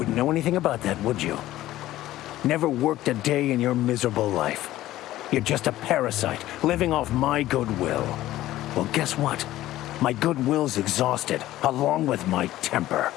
know anything about that, would you? Never worked a day in your miserable life. You're just a parasite, living off my goodwill. Well, guess what? My goodwill's exhausted, along with my temper.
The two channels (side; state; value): right; quieter; 15.0 dB